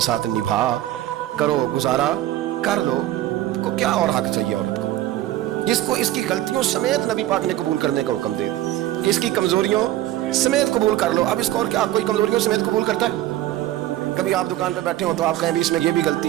साथ निभा करो, गुजारा कर लो। को क्या और हक चाहिए औरत को, जिसको इसकी गलतियों समेत नबी पाक ने कबूल करने का हुक्म दे कि इसकी कमजोरियों समेत कबूल कर लो। अब इसको और क्या कोई कमजोरियों समेत कबूल करता है? कभी आप दुकान पे बैठे हो तो आप कहें भी इसमें ये भी गलती,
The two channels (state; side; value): quieter; left; 14.2 dB